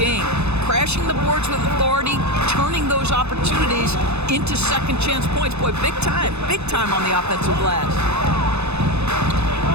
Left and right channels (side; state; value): left; late; 0.80 ms